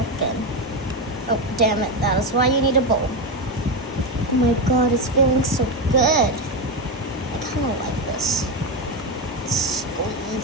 in. Oh, damn it. That is why you need a bowl. Oh my god, it's feeling so good. I kind of like this.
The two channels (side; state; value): both; normal; correlation 0.12